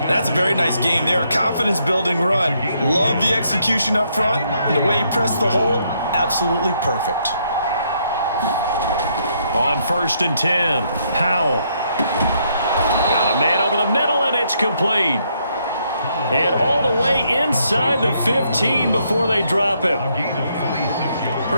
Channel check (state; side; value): inverted; both; correlation -0.73